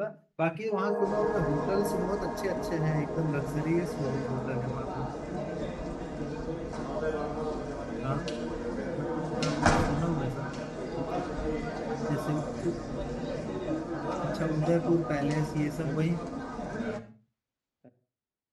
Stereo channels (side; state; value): both; identical; correlation 1.00